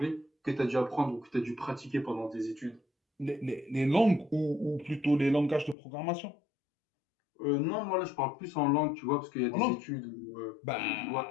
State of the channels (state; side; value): drops out; right; at 5.8 s